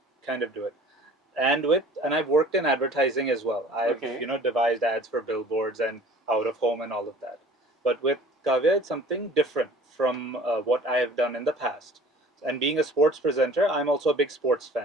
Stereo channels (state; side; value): normal; both; correlation 0.48